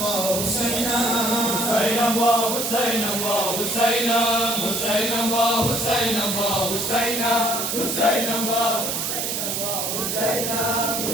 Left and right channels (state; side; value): noise; right; hiss, 1 dB below the sound